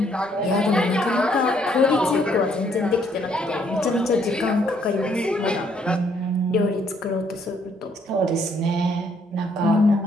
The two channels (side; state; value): both; normal; correlation 0.68